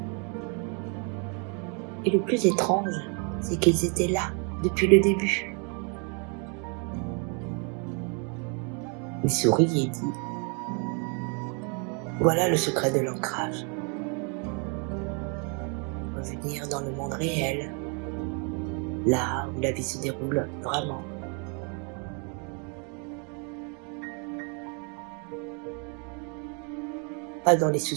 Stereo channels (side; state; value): left; quieter; 36.8 dB